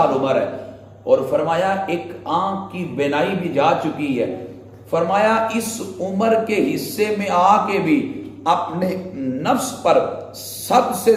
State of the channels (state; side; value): identical; both; correlation 1.00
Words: عمر ہے, اور فرمایا ایک آنکھ کی بینائی بھی جا چکی ہے. فرمایا اس عمر کے حصے میں آ کے بھی اپنے نفس پر سب سے